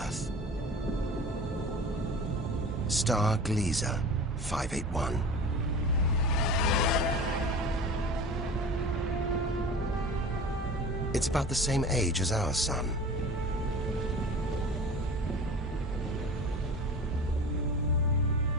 Star Gliese 581. It's about the same age as our sun.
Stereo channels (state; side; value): normal; both; correlation 0.37